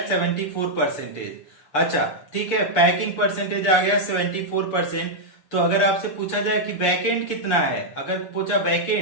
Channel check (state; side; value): late; right; 6.8 ms